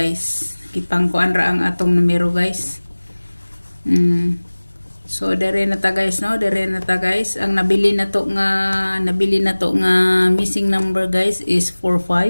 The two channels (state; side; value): inverted; both; correlation -1.00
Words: Kipangkuan ra ang atong numero guys. So dire na ta guys no, dire na ta guys. Ang nabili na to nga missing number guys is